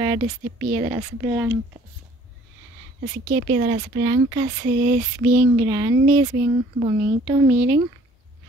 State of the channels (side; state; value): both; normal; correlation 0.56